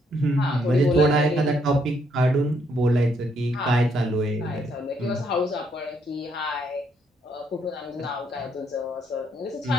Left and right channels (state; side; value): normal; both; correlation 0.72